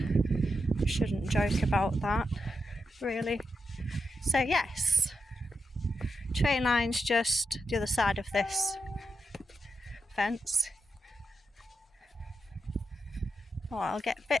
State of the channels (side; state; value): both; normal; correlation 0.86